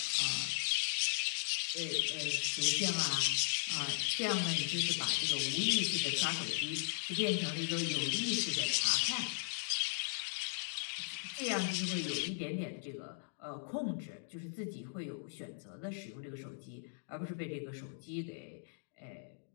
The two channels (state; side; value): silent; right; digital silence